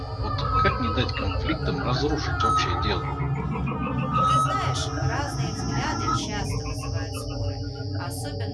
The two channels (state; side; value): identical; both; correlation 1.00